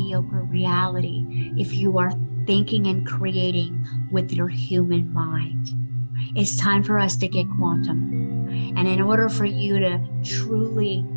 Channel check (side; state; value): both; inverted; correlation -1.00